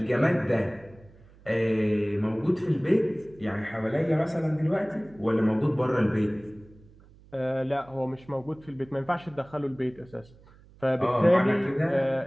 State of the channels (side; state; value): right; noise; hum, 25 dB below the sound